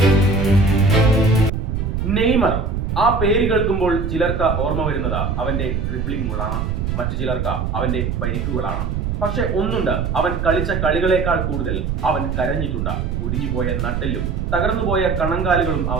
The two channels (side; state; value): right; noise; rumble, 1 dB below the sound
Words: നെയ്മർ. ആ പേര് കേൾക്കുമ്പോൾ ചിലർക്ക് ഓർമ്മ വരുന്നത് അവന്റെ ഡ്രിബ്ലിംഗ് ഗോളാണ്, മറ്റു ചിലർക്ക് അവന്റെ പരിക്കുകളാണ്. പക്ഷെ ഒന്നുണ്ട്, അവൻ കളിച്ച കളികളെക്കാൾ കൂടുതൽ അവൻ കരഞ്ഞിട്ടുണ്ട്. ഒടിഞ്ഞുപോയ നട്ടെല്ലും തകർന്നുപോയ കണങ്കാലുകളും